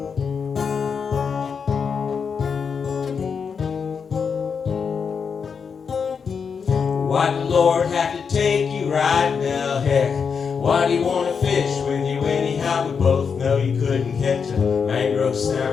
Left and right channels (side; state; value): right; quieter; 6.1 dB